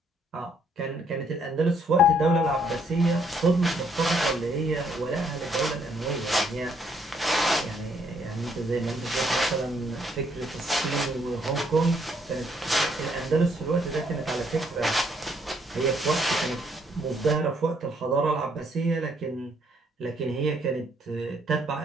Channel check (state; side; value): normal; both; correlation 0.69